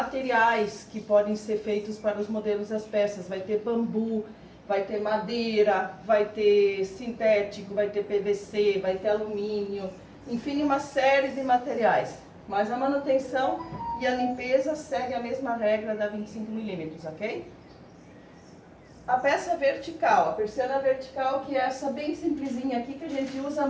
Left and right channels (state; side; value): identical; both; correlation 1.00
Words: que podem ser feitos para os modelos das peças. Vai ter bambu, vai ter madeira, vai ter sintético, vai ter PVC, vai ter alumínio, enfim, uma série de materiais. Mas a manutenção e a limpeza segue a mesma regra da 25 milímetros, ok? A peça vertical, a persiana vertical, que é essa bem simplesinha aqui, que a gente usa